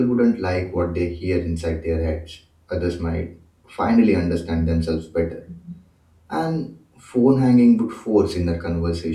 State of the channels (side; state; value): both; identical; correlation 1.00